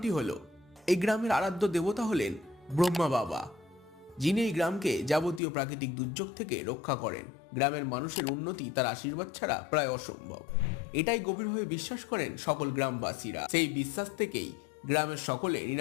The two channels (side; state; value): right; drops out; at 5.4 s